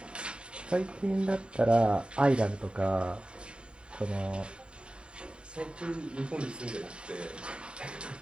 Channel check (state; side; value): late; left; 0.052 ms